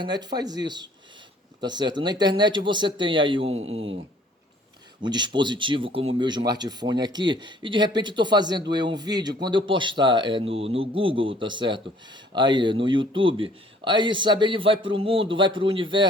faz isso, tá certo? Na internet você tem aí um dispositivo como o meu smartphone aqui, e de repente estou fazendo um vídeo, quando eu postar no Google, tá certo? Aí no YouTube, aí sabe, ele vai para o mundo, vai para o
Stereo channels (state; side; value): normal; both; correlation 0.57